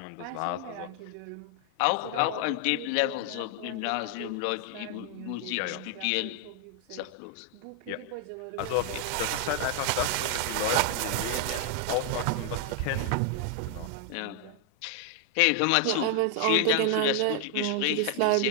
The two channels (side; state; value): both; different; correlation 0.00